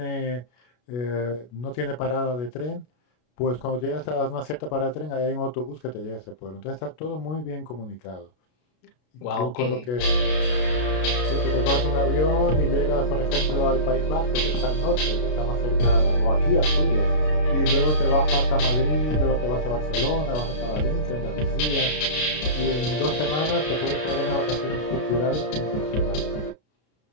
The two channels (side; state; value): right; late; 33 ms